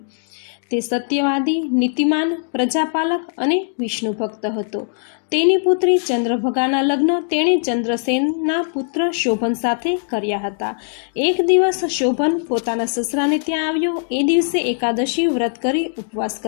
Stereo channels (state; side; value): silent; right; digital silence